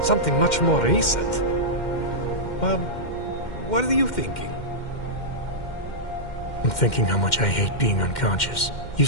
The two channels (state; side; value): late; right; 2.1 ms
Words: Something much more recent. What are you thinking? I'm thinking how much I hate being unconscious. You